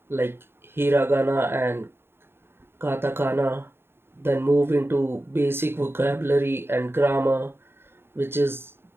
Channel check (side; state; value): left; late; 0.11 ms